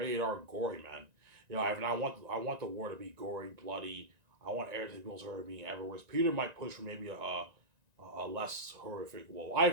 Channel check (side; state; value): left; late; 1.9 ms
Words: R gory, man. You know, I want the war to be gory, bloody. I want everything people's horror being everywhere. Whereas Peter might push for maybe a less horrific. Well, I